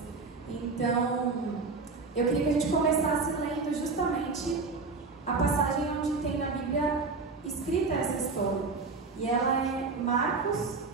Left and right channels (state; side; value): quieter; left; 4.2 dB